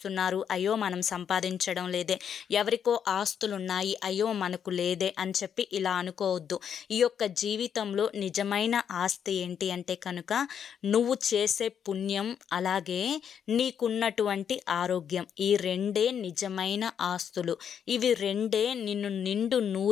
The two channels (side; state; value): right; quieter; 8.2 dB